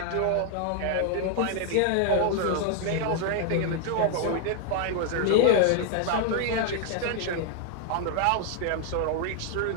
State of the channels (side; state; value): both; different; correlation 0.00